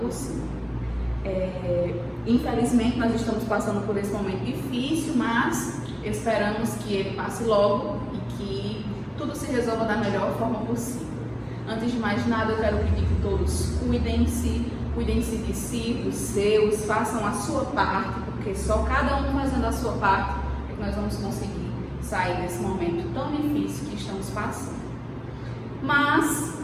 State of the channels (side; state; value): both; identical; correlation 1.00